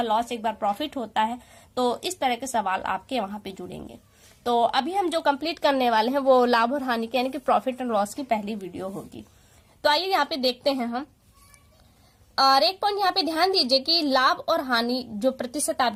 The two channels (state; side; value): identical; both; correlation 1.00